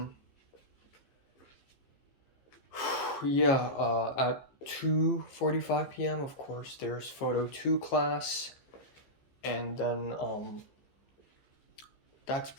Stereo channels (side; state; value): right; late; 15 ms